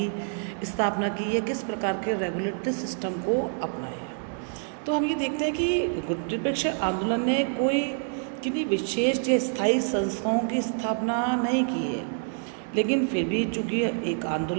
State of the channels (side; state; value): left; silent; 60 dB below the other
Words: स्थापना की है, किस प्रकार के रेगुलेटरी सिस्टम को अपनाया। तो हम ये देखते हैं कि गुट निरपेक्ष आंदोलन ने कोई किन्हीं विशेष या स्थायी संस्थाओं की स्थापना नहीं की है, लेकिन फिर भी चूँकि एक